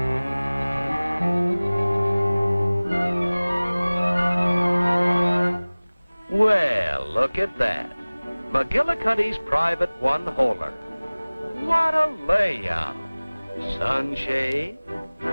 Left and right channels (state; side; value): inverted; both; correlation -1.00